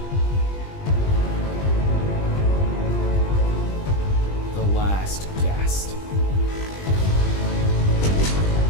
The last guest.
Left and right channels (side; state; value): right; late; 20 ms